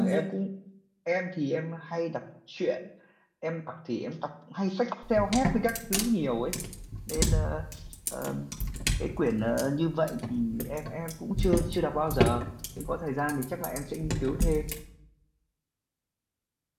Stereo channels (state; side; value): identical; both; correlation 1.00